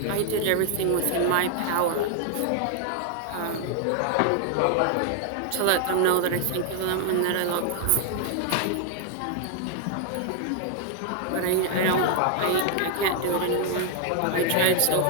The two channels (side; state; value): both; different; correlation 0.00